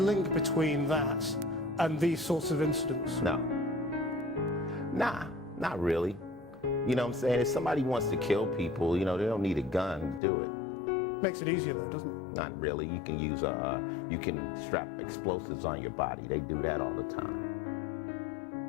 between that and these sorts of incidents? No. Nah, not really. You know what I'm saying? If somebody wants to kill people, you know, they don't need a gun to do it. Makes it easier though, doesn't it? Not really. You can use you can strap explosives on your body. They do that all the time.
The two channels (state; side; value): drops out; right; at 10.2 s